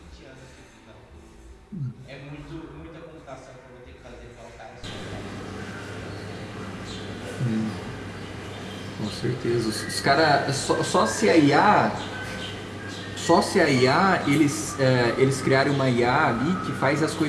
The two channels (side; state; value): both; identical; correlation 1.00